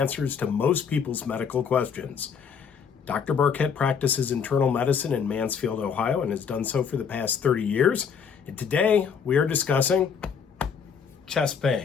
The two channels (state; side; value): quieter; right; 6.7 dB